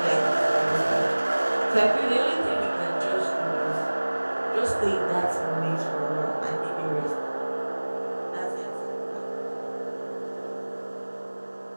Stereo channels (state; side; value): inverted; both; correlation -1.00